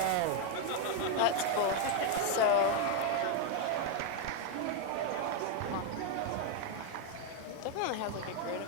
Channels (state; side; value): different; both; correlation 0.01